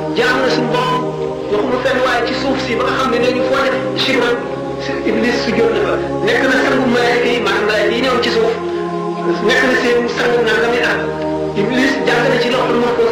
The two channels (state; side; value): identical; both; correlation 1.00